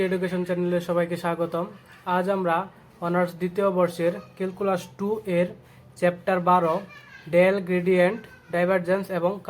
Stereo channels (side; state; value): both; identical; correlation 1.00